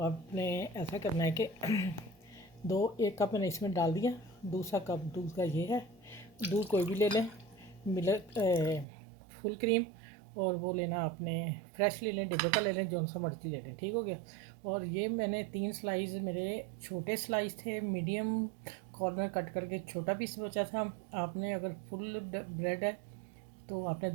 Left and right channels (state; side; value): drops out; left; at 8.8 s